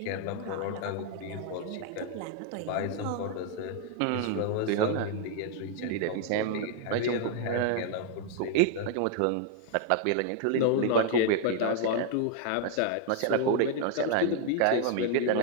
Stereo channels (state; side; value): different; both; correlation 0.00